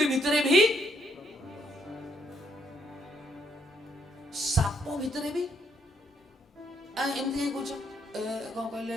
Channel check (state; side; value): normal; both; correlation 0.72